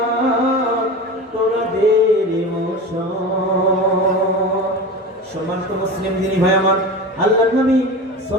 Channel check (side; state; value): both; normal; correlation 0.29